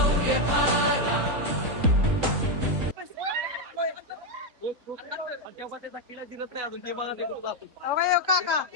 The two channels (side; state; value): left; late; 3.7 ms